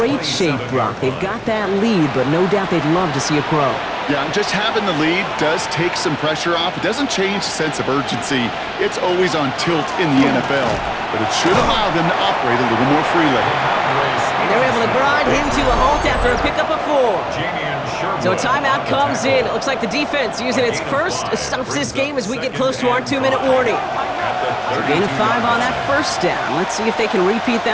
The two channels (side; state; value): both; identical; correlation 1.00